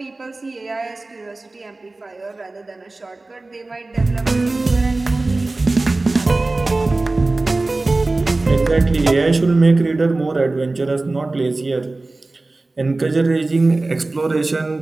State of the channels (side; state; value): left; quieter; 3.2 dB